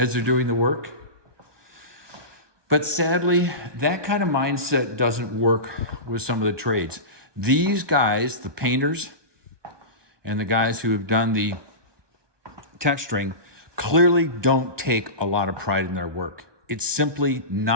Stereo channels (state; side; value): late; left; 1.2 ms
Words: they're doing the work. But sadly, that kind of mindset doesn't work with some of the trades. These guys, the painters and the guys who have done the texturing, clearly don't take a lot of pride in their work. It's simply